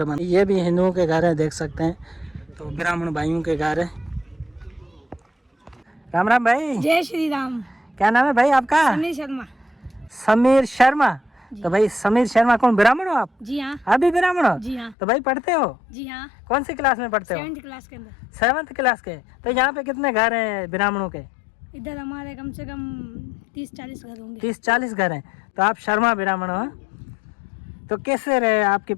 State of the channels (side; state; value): right; drops out; at 15.0 s